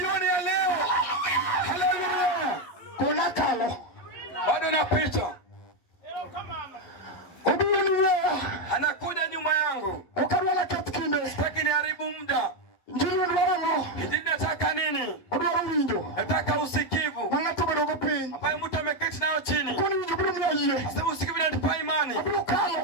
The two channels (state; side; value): late; right; 12 ms